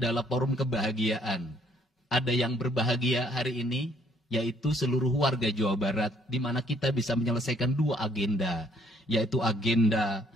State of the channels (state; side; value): normal; both; correlation 0.64